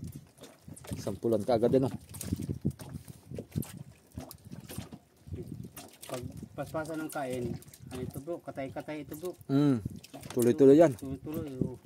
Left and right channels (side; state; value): both; identical; correlation 1.00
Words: Sampulan ka agad din oh. Pag paspasan ng kain, ano ito bro? Katay-katay ito bro. Tuloy-tuloy yan. Tuloy-tuloy.